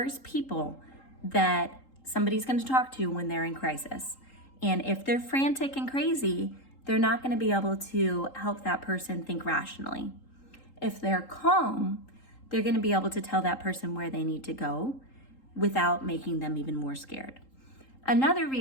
people that somebody's going to talk to when they're in crisis. And if they're frantic and crazy, they're not going to be able to help that person think rationally. If they're calm, they're going to be able to tell that person where they need to go without making them even more scared. Another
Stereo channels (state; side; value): late; right; 3.8 ms